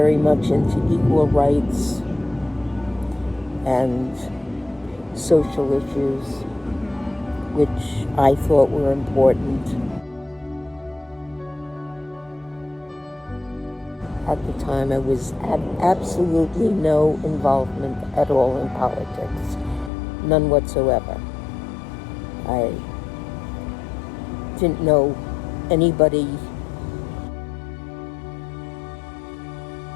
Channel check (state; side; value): drops out; right; at 19.9 s